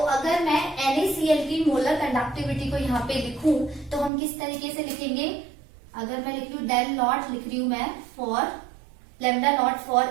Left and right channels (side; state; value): left; drops out; at 4.1 s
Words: अगर मैं NaCl की मोलर कंडक्टिविटी को यहाँ पे लिखूं तो हम किस तरीके से लिखेंगे? अगर मैं लिख लू डेल नॉट, लिख रही हूं मैं for lambda naught for